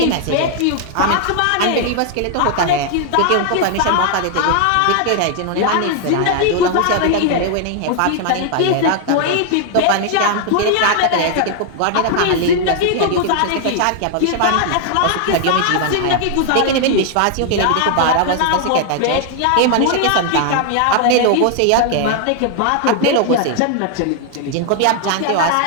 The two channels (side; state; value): both; different; correlation 0.00